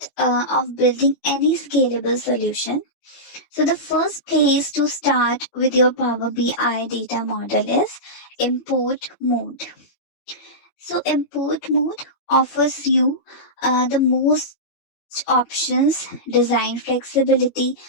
of building any scalable solution. So, the first place to start with your Power BI data model is import mode. So, import mode offers you the most options, design flexibility,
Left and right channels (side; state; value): right; late; 16 ms